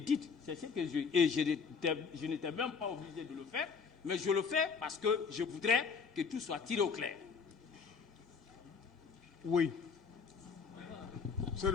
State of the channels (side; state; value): right; quieter; 5.7 dB